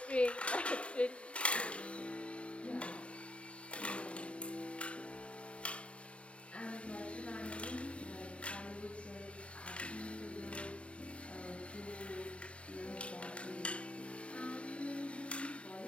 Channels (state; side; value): late; right; 0.060 ms